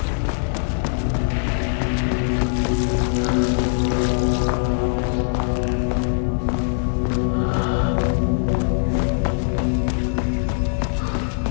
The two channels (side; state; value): right; silent; 65 dB below the other